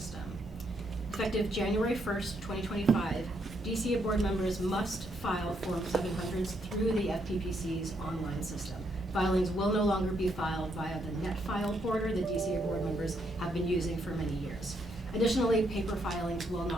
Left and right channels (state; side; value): normal; both; correlation 0.75